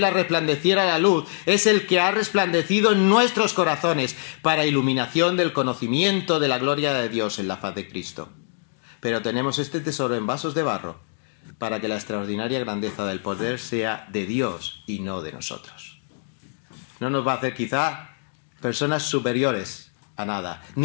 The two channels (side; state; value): right; silent; digital silence